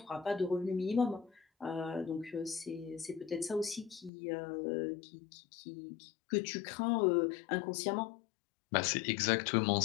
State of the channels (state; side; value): drops out; right; at 4.1 s